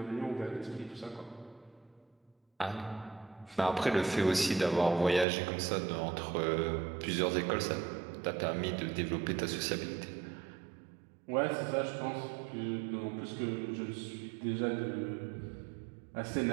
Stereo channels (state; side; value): drops out; left; at 5.2 s